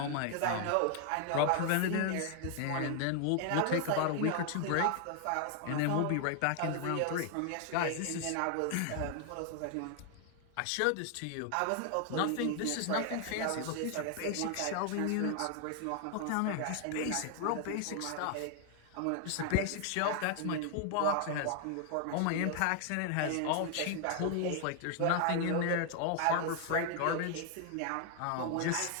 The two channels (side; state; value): both; different; correlation 0.00